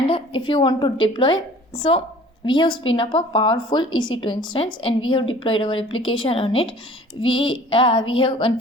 if you want to deploy, so we have spin up a powerful EC2 instance and we have deployed our application on it. We have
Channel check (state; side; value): normal; both; correlation 0.49